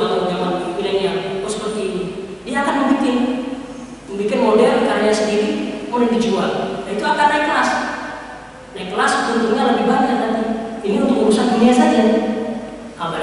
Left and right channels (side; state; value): both; identical; correlation 1.00